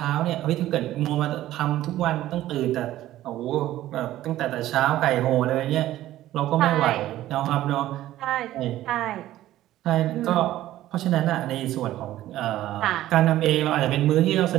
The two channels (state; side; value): quieter; left; 14.3 dB